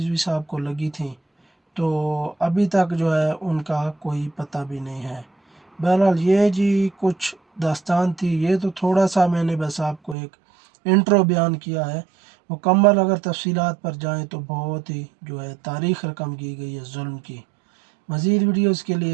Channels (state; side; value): drops out; left; at 10.2 s